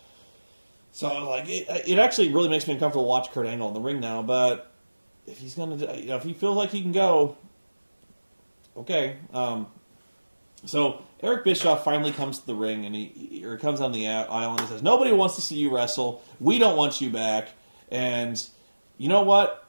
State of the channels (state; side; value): inverted; both; correlation -1.00